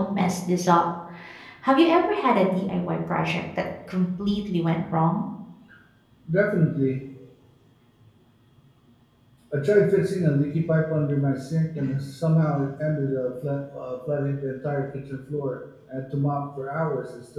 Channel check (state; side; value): identical; both; correlation 1.00